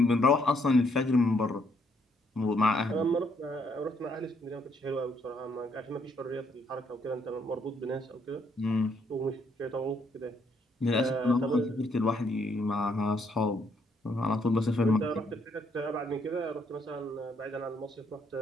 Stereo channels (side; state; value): both; normal; correlation 0.71